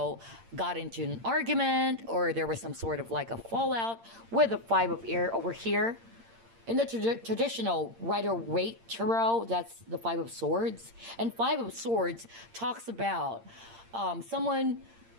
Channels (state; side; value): late; left; 8.7 ms